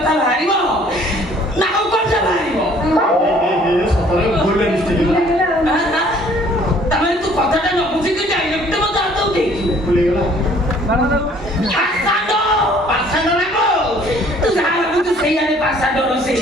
ବାହାରିବ ନା ଆଉ କଣ ବାହାରିବ ତାମାନେ ତୁ କଥାଟା ନ ବୁଝିକି ଡାଇରେକ୍ଟ ମତେ ହାତ ଉଠେଇଛୁ ତୁ ଯାହା ଭାବୁଛୁ ସେଇଆରେ ପାସାଡର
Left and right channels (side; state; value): both; normal; correlation 0.57